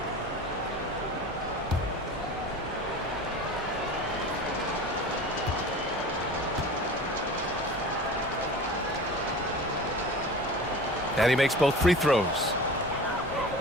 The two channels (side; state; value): both; normal; correlation 0.37